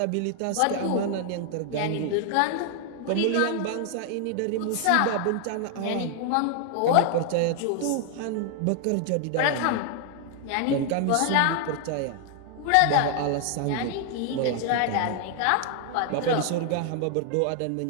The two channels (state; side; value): different; both; correlation 0.00